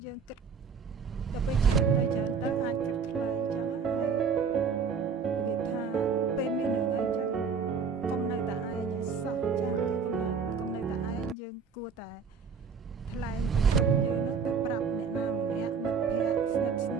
យើងគិតដល់ពេលច្រើនទៅអាចគិតខ្លីអញ្ចឹងហើយវាថាពេលមានរឿងអីអញ្ចឹងកុំនៅតែឯងឲ្យសោះចាគឺកុំនៅតែឯងយើងគួរតែថ្លែងពីទុកយើងនឹងទៅប្រាប់អ្នកណាម្នាក់មិត្តភ័ក្តិស្និទ្ធស្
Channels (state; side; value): quieter; left; 5.7 dB